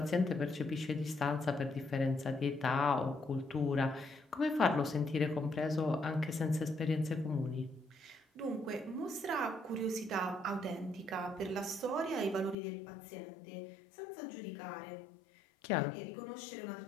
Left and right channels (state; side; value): drops out; right; at 12.6 s